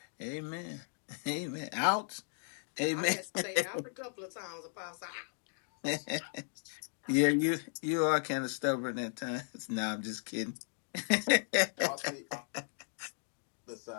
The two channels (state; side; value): silent; right; digital silence